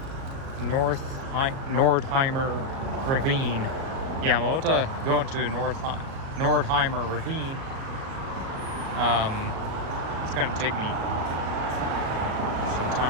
Nordheimer Ravine. Yeah, I'm about to go into Nordheimer Ravine. It's gonna take me some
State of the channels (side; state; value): left; late; 37 ms